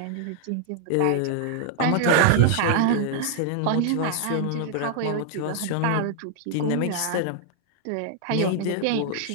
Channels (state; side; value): different; both; correlation 0.00